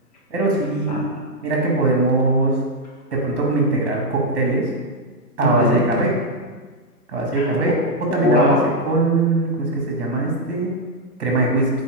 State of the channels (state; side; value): normal; both; correlation -0.01